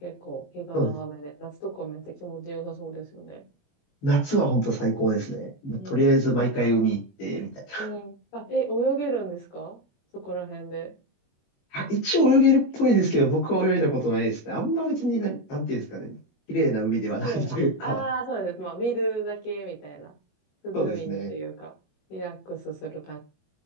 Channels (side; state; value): right; late; 21 ms